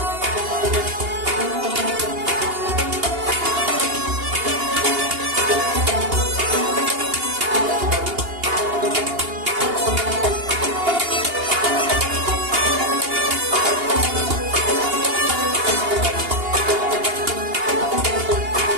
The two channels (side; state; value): left; late; 2.8 ms